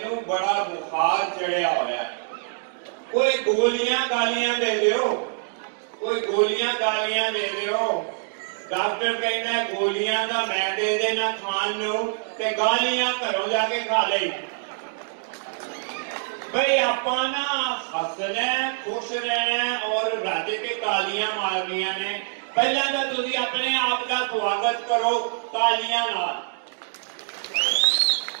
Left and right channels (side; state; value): left; silent; digital silence